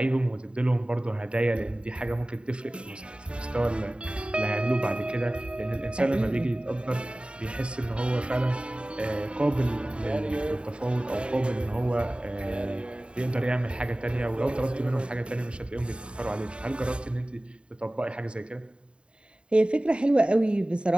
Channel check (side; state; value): left; late; 0.054 ms